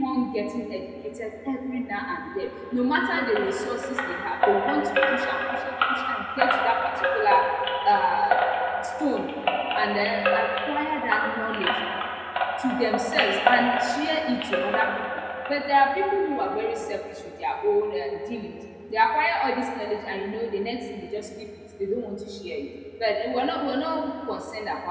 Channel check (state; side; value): identical; both; correlation 1.00